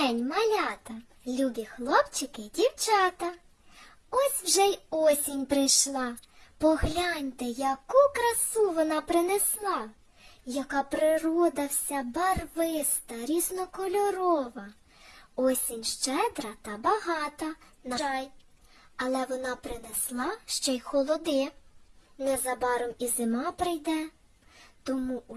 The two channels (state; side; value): identical; both; correlation 1.00